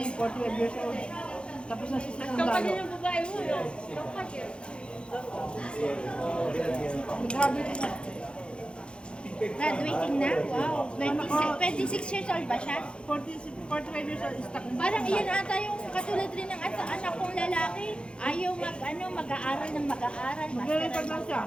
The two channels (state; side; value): late; right; 0.055 ms